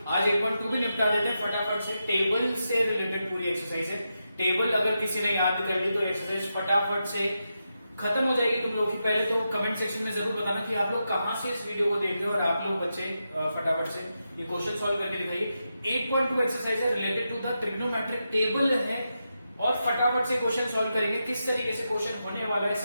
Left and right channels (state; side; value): inverted; both; correlation -0.87